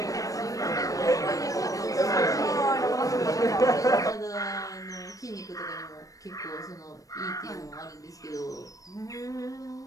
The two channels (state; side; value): late; right; 0.16 ms